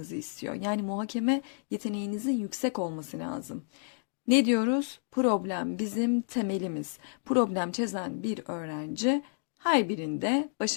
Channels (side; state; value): right; silent; digital silence